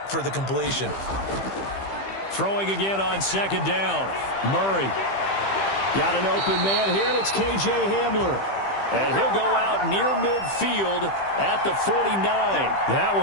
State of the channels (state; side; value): late; right; 15 ms